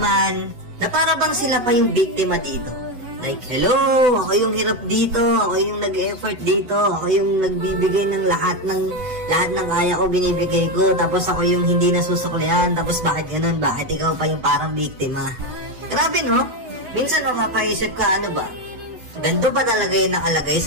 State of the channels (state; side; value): late; left; 7.9 ms